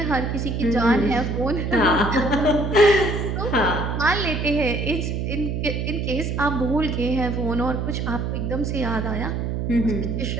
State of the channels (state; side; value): noise; right; hum, 1 dB below the sound